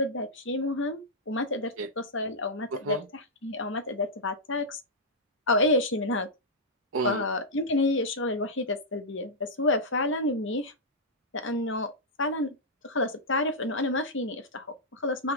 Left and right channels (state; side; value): normal; both; correlation -0.09